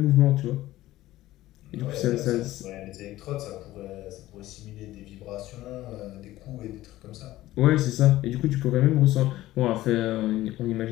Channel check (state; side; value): quieter; right; 15.9 dB